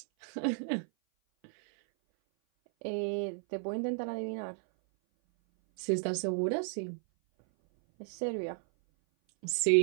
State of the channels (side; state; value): left; silent; 56 dB below the other